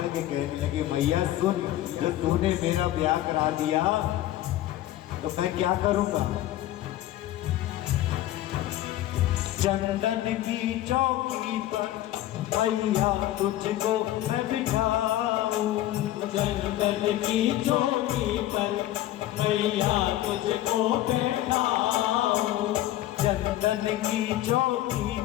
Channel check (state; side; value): quieter; right; 14.1 dB